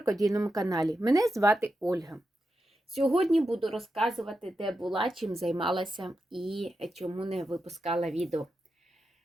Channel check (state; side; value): normal; both; correlation 0.88